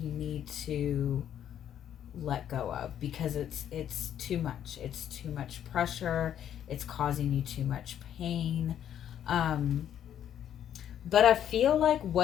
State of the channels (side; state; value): right; quieter; 10.1 dB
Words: need to let go of because it's too much. It's too much pressure. It's causing you too much pain. But I feel like